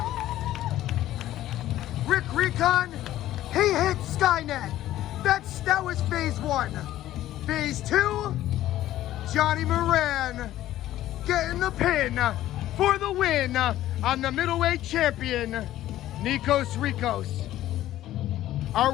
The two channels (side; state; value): right; quieter; 13.8 dB